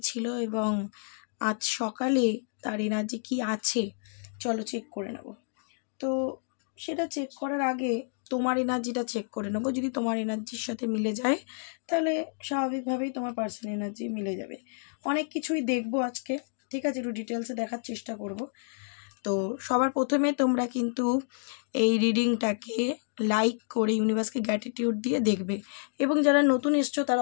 ছিল এবং আজ সকালে তার এনার্জি কী আছে। চলো চেক করে নেব। তো সেটা চেক করার আগে তোমার এনার্জিটা চেক করে নেবো। যদি তোমার এনার্জির সাথে মিলে যায় তাহলে স্বাভাবিকভাবেই তোমার পার্সোনাল এনার্জি মিলে যাবে। অনেক কিছুই দেখবো আজকে, ঠিক আছে? একটু ডিটেলসে দেখার চেষ্টা করব। তো সবার প্রথমে তোমরা কিন্তু এই রিডিংটাকে লাইক করে ইউনিভার্সকে গ্র্যাটিটিউড দিয়ে দেখবে, এবং যারা নতুন এসছো তারা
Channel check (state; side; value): silent; right; digital silence